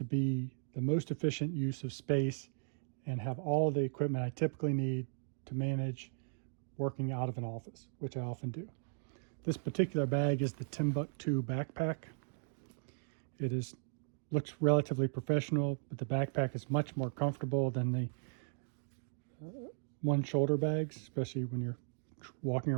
be the most efficient use of space and have all the equipment I typically need to manage working out of an office, which I often do. This particular bag is the Timbuktu backpack. It looks relatively professional, but the backpack is much more comfortable than the one shoulder bags, especially when you're walking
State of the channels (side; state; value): left; silent; digital silence